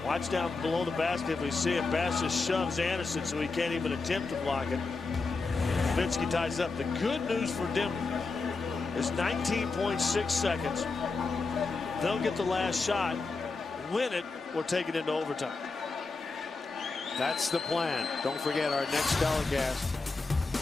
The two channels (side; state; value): right; quieter; 3.9 dB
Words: Watch down below the basket if we see it. Bass just shoves Andersen so he can't even attempt to block it. Nowitzki ties up. The good news for Denver is 19.6 seconds. They'll get the last shot, win it, or take it into overtime. That's the plan. Don't forget our next